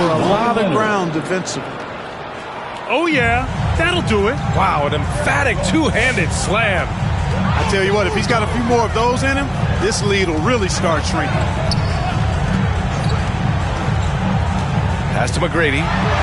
lot of ground defensively. Oh, yeah. That'll do it. Wow, an emphatic two-handed slam. I tell you what, if he's got a few more of those in him, this lead will really start shrinking. Pass to McGrady.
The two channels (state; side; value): identical; both; correlation 1.00